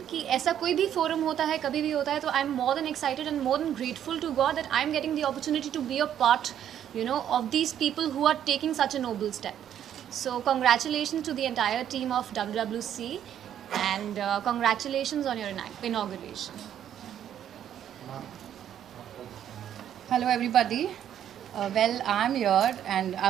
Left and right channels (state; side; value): quieter; left; 10.1 dB